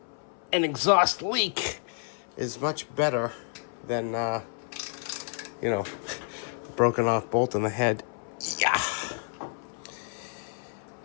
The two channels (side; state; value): right; silent; 58 dB below the other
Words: An exhaust leak is much better than, you know, broken off bolt in the head. Yeah.